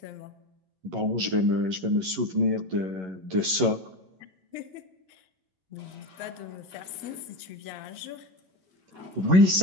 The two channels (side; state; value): left; late; 11 ms